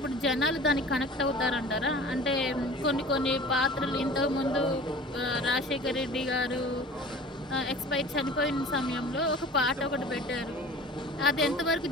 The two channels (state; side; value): normal; both; correlation 0.42